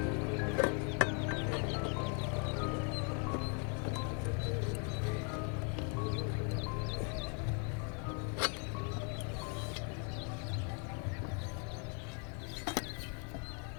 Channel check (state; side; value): quieter; right; 38.3 dB